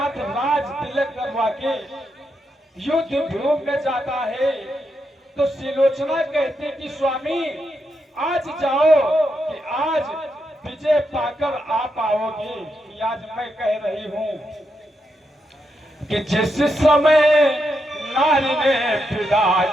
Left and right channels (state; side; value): normal; both; correlation 0.83